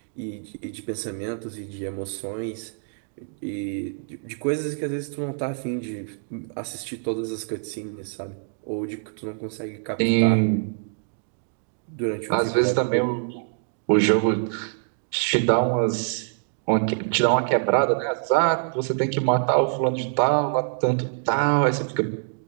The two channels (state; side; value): silent; left; digital silence